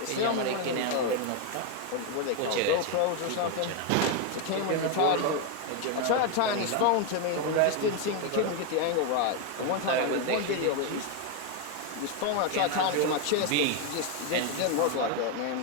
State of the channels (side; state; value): both; different; correlation 0.01